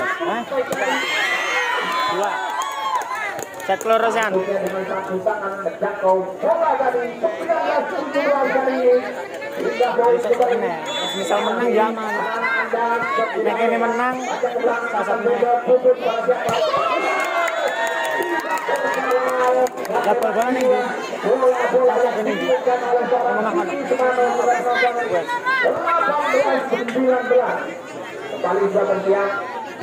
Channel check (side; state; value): both; identical; correlation 1.00